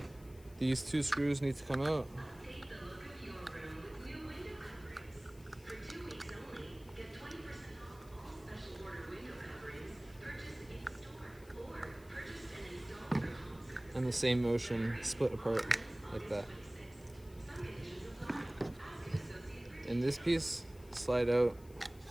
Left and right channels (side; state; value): left; noise; hiss, 24 dB below the sound